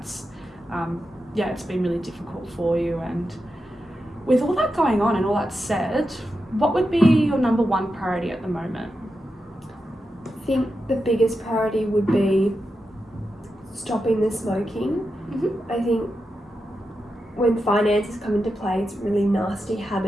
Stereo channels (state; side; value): normal; both; correlation 0.89